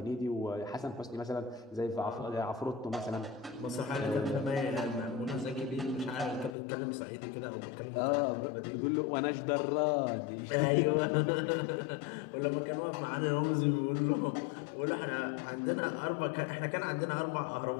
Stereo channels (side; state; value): right; drops out; at 6.5 s